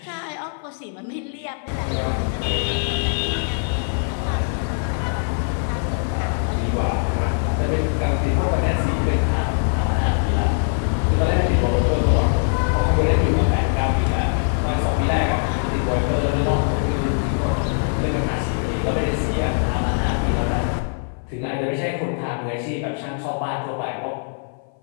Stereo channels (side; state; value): right; silent; 56 dB below the other